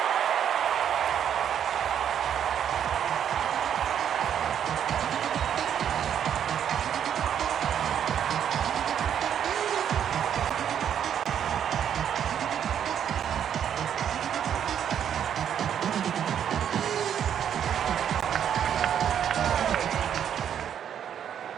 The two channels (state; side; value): quieter; left; 9.1 dB